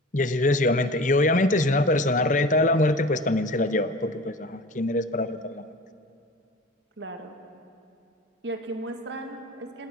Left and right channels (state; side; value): normal; both; correlation 0.38